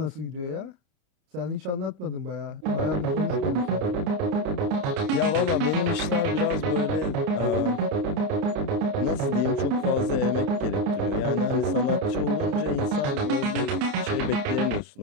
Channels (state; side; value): late; left; 29 ms